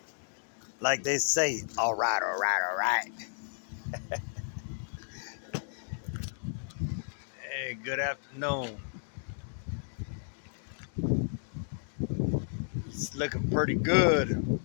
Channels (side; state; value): right; silent; digital silence